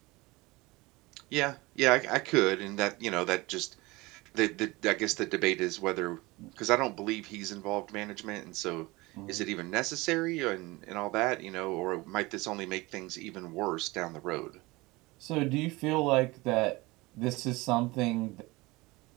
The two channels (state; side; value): quieter; left; 22.4 dB